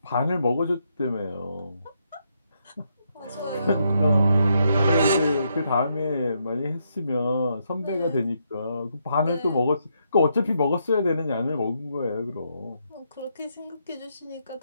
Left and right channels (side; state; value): both; inverted; correlation -0.78